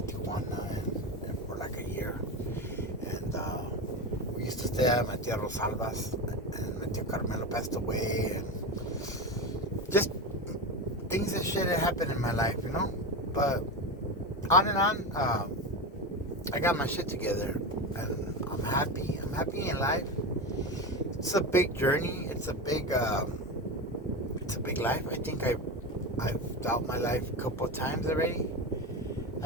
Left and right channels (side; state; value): both; normal; correlation 0.20